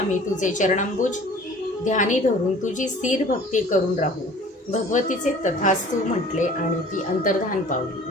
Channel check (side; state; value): both; normal; correlation 0.48